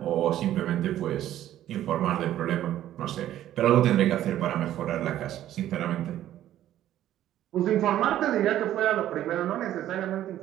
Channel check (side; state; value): left; quieter; 12.5 dB